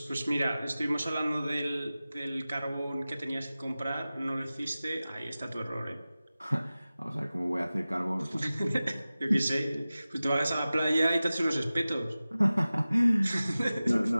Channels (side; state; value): both; inverted; correlation -0.96